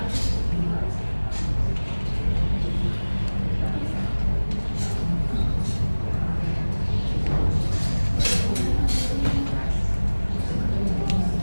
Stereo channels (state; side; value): inverted; both; correlation -1.00